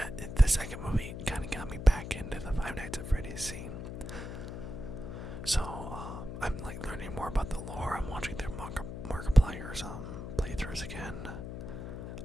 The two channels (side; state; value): left; noise; hum, 7 dB below the sound